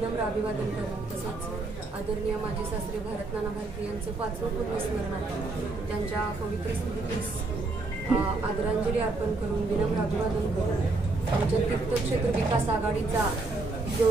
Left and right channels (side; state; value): left; quieter; 3.3 dB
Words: अभिवादन करून तसंच आदरणीय माजी सासरे भारतनाना भारती यांचं 5वं पुण्यस्मरण आहे त्यांच्या पवित्र स्मृतीस आदरांजली अर्पण करून विनम्र अभिवादन करून आमच्या तीर्थक्षेत्र विकास आघाडीचा जो